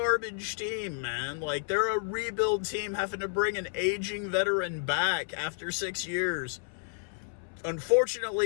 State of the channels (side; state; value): right; silent; 57 dB below the other